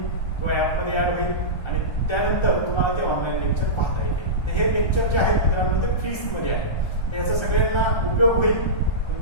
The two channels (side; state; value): right; late; 1.3 ms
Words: किंवा ॲपमध्ये ऍड होईल आणि त्यानंतर तुम्हाला ते ऑनलाईन लेक्चर पाहता येईल. तर हे लेक्चर जे आहेत मित्रांनो ते फीसमध्ये आहे. याचा सगळ्यांना उपयोग होईल.